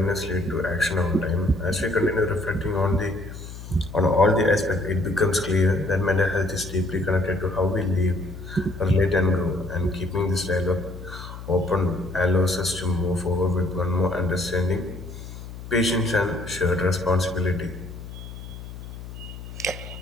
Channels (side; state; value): left; noise; hum, 12 dB below the sound